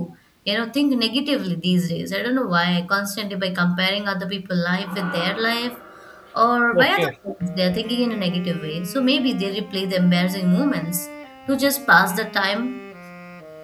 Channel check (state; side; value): identical; both; correlation 1.00